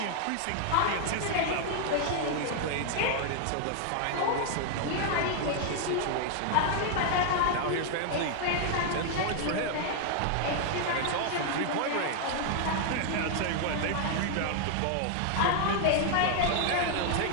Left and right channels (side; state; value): both; different; correlation 0.00